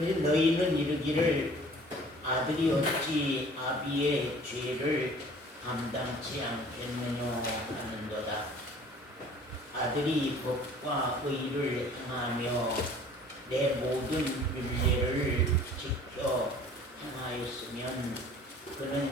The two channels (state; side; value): normal; both; correlation 0.50